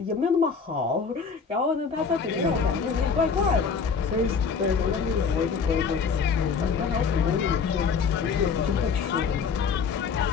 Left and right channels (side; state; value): right; quieter; 5.7 dB